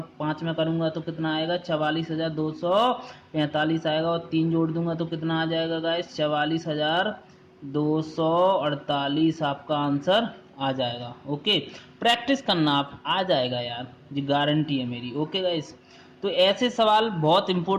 5 में करूंगा तो कितना आएगा, 44,245 आएगा, और 3 जोड़ दूंगा तो कितना आ जाएगा गाइस, 44,248 आपका आंसर आ जाएगा। ओके, प्रैक्टिस करना, आप आ जाएगा यार, ये गारंटी है मेरी। ओके गाइस, तो ऐसे सवाल बहुत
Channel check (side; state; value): both; identical; correlation 1.00